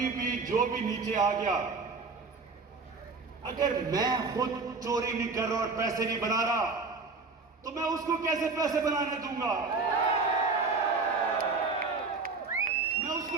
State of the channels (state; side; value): quieter; left; 4.2 dB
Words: भी जो भी नीचे आ गया, अगर मैं खुद चोरी नहीं कर रहा और पैसे नहीं बना रहा, तो मैं उसको कैसे पैसे बनाने दूंगा? मैं उसको